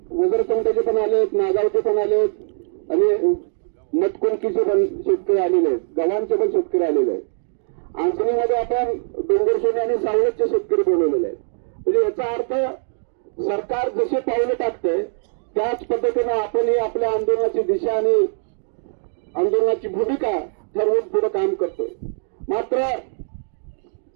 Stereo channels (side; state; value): left; silent; digital silence